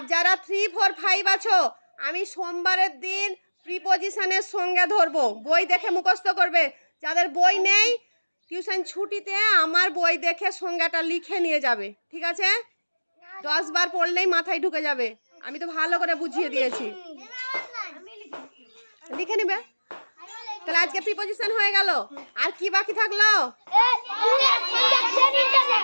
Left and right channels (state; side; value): inverted; both; correlation -1.00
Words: যারা 3, 4, 5 আছো, আমি সোমবারের দিন প্রিপজিশনের সংজ্ঞা ধরবো, বই দেখে মুখস্থ করবে। যাদের বই নেই, টিউশন ছুটিতে আমার বই দেখে সংজ্ঞাটা লিখে নিয়ে যাবে, ঠিক আছে? 10 বার পড়লেই মাথায় ঢুকে যাবে, আমি তো ভালো করে বুঝিয়ে দিয়েছি। লিখে নিবে। তাহলে আজকে প্রিপোজিশন হয়ে গেল। আর কি বাকি থাকলো?